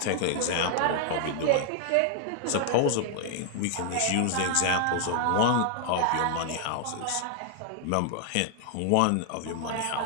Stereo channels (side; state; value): both; different; correlation 0.00